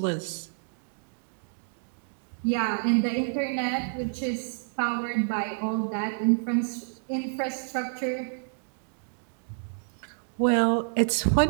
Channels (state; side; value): silent; left; digital silence